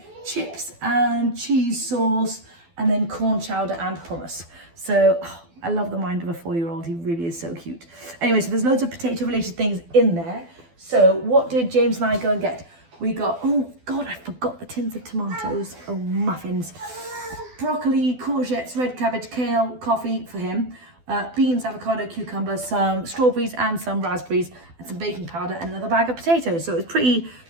chips and cheese sauce, and then corn chowder and hummus. So I love the mind of a 4-year-old. He really is so cute. Anyway, so there's loads of potato related things in there. So what did James and I go and get? We got, oh God, I forgot the tins of tomatoes. Oh, muffins. Broccoli, courgettes, red cabbage, kale, coffee for him. Beans, avocado, cucumber, some strawberries and some raspberries, and some baking powder, and another bag of potatoes. So it was pretty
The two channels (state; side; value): late; left; 12 ms